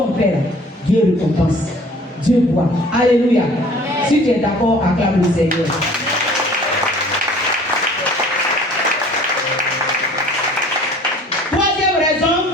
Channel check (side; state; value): both; normal; correlation 0.50